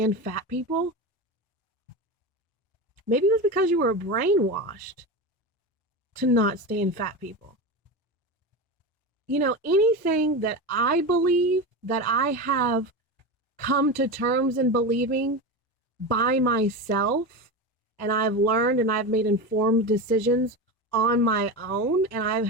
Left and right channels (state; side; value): normal; both; correlation 0.22